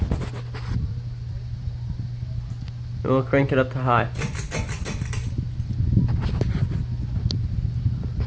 And we'll crank it up to high.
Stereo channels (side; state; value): both; identical; correlation 1.00